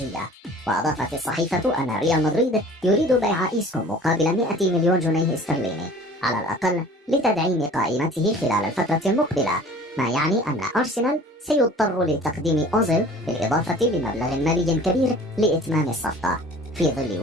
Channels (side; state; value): both; normal; correlation 0.46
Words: وأضافت الصحيفة أن ريال مدريد يريد بيع إيسكو مقابل 100 مليون جنيه استرليني على الأقل لتدعيم قائمته خلال الفترة المقبلة، ما يعني أن أرسنال سيضطر لتقديم أوزيل بالإضافة لمبلغ مالي كبير لإتمام الصفقة، في ظل